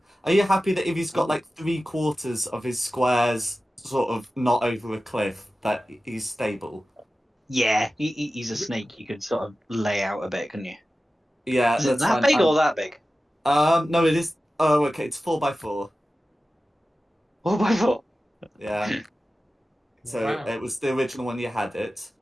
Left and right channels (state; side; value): normal; both; correlation 0.95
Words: Are you happy that if he's got like 3/4 of his squares sort of not over a cliff, that he's stable? Yeah, he's a snake. You could sort of lay out a bit, couldn't you? Yeah, Is it that's that fine. big or that big? No, it is. Oh, okay. It's 4x4. 4x4. Yeah. So Wow. it was the original one you had it.